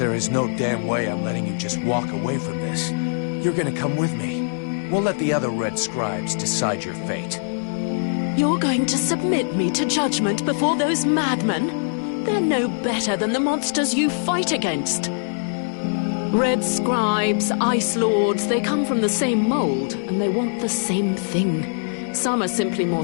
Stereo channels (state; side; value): silent; right; 64 dB below the other